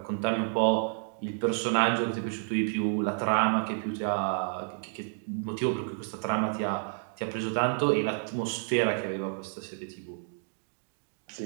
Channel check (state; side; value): silent; left; 58 dB below the other